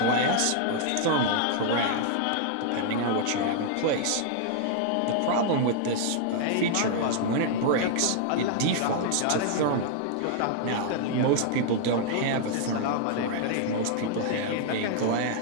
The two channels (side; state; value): both; different; correlation -0.01